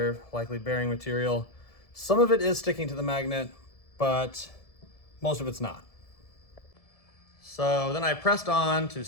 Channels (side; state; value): right; late; 1.7 ms